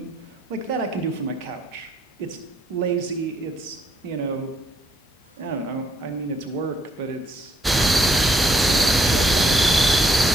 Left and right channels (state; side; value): normal; both; correlation 0.70